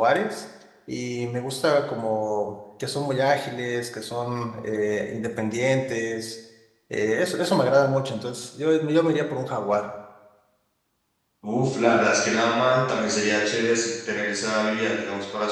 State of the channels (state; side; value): identical; both; correlation 1.00